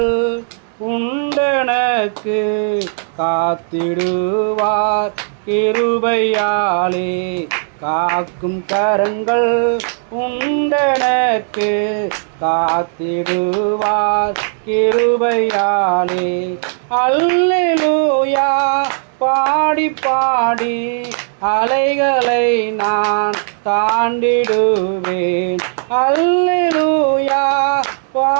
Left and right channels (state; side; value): silent; left; digital silence